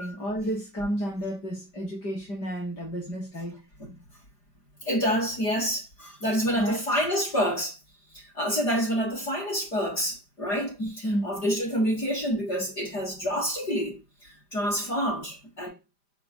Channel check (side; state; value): right; late; 5.0 ms